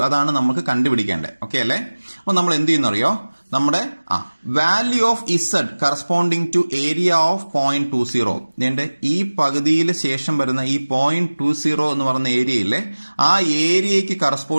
അതാണ് നമുക്ക് കണ്ടുപിടിക്കേണ്ടത്. ഓക്കെ അല്ലേ? അപ്പൊ നമ്മൾ എന്ത് ചെയ്യുന്നറിയോ, നമ്മുടെ value of Z corresponding to area of 0.20. ഇതിന്റെ ഈ പകുതിയിൽ ശേഷം വരുന്ന ഈ 0.20 എന്ന് പറയുന്ന ഏരിയയിലെ ആ ഏരിയയ്ക്ക്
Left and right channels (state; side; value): inverted; both; correlation -1.00